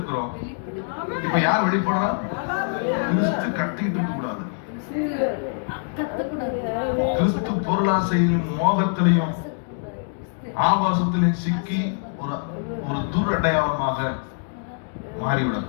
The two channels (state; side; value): silent; right; digital silence